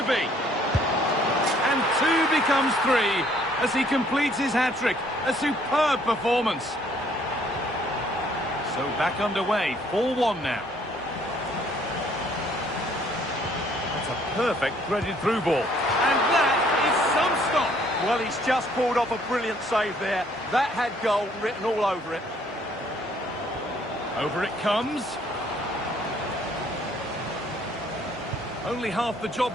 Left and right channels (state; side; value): normal; both; correlation 0.62